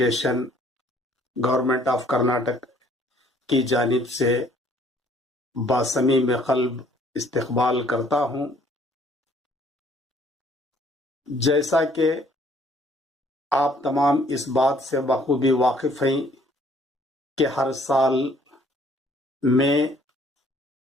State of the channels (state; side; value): normal; both; correlation 0.60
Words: government of Karnataka کی جانب سے باصمیم قلب استقبال کرتا ہوں۔ جیسا کہ آپ تمام اس بات سے بخوبی واقف ہیں کہ ہر سال مئی